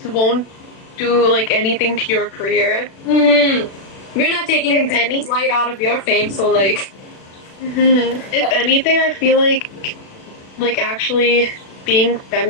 won't do like anything to your career. We're not taking If any- light out of your fame, so, like... If anything, I feel like actually being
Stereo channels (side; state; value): right; late; 36 ms